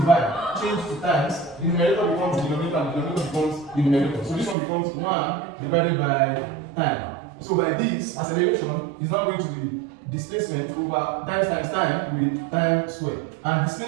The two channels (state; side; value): drops out; left; at 4.5 s